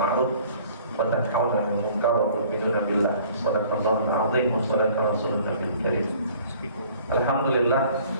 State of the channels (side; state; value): both; inverted; correlation -0.53